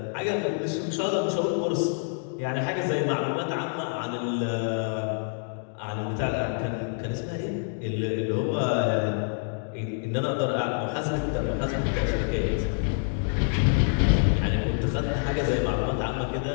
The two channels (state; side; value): silent; right; 60 dB below the other